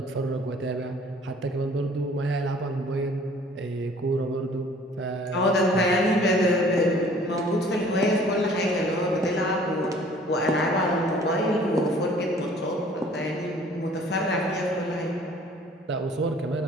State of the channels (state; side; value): normal; both; correlation 0.53